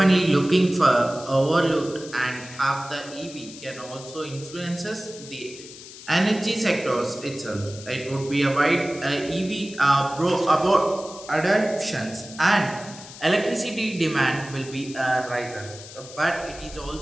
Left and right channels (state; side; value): noise; left; hiss, 16 dB below the sound